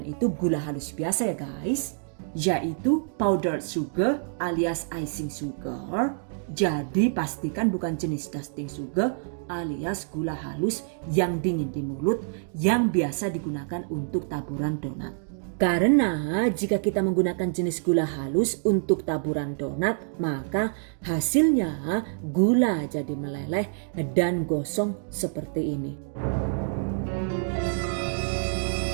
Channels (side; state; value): left; silent; digital silence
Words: itu gula halus biasa ya guys, yaitu powdered sugar alias icing sugar. Jadi pastikan bukan jenis dusting sugar alias gula halus yang dingin di mulut yang biasa digunakan untuk taburan donat. Karena jika kita menggunakan jenis gula halus untuk taburan donat, maka hasilnya gula jadi meleleh dan gosong seperti ini.